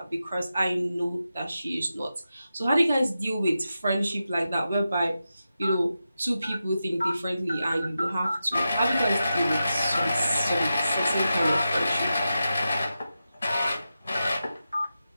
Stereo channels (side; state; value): both; inverted; correlation -0.90